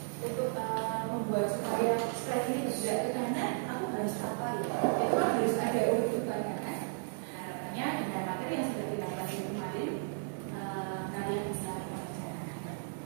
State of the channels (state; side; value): silent; left; 55 dB below the other